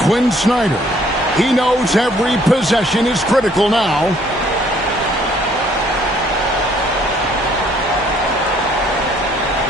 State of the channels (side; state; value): both; normal; correlation 0.62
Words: Snyder. He knows every possession is critical now.